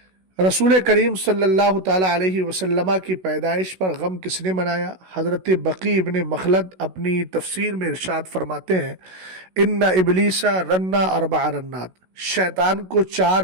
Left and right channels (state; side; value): late; left; 16 ms